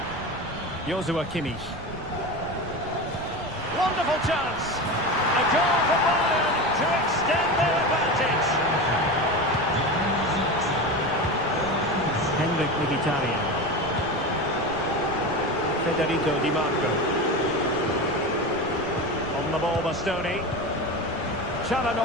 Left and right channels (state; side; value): noise; right; rumble, 14 dB below the sound